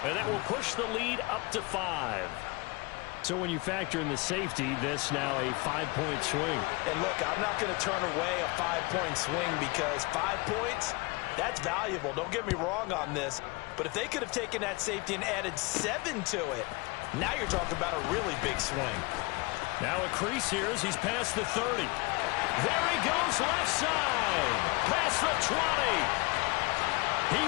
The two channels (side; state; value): right; quieter; 26.0 dB